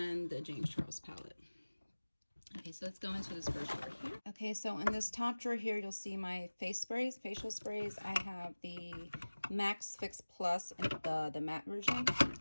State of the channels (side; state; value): both; inverted; correlation -1.00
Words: the James Charles palette. Okay, so let's go into this first drawer here. Okay, so in this top drawer here, you'll see my face sprays, facial sprays. I have the Max Fix Plus in the matte version.